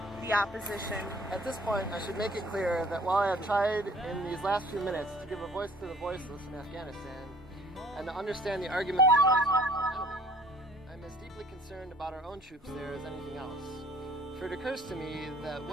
the opposition. At this point, I should make it clear that while I have tried in these last few minutes to give a voice to the voiceless in Afghanistan and to understand the argument of the enemy, I'm as deeply concerned about our own troops there as anything else. For it occurs to me that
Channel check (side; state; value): both; normal; correlation 0.54